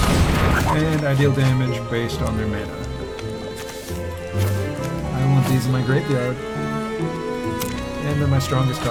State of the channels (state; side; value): identical; both; correlation 1.00